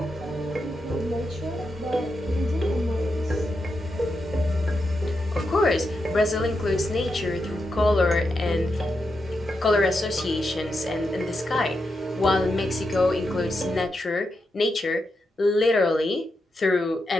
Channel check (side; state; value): both; normal; correlation 0.86